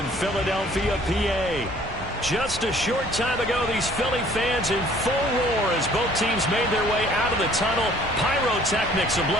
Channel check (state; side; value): normal; both; correlation 0.56